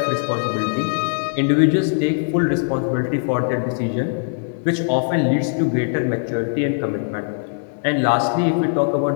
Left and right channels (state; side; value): silent; right; digital silence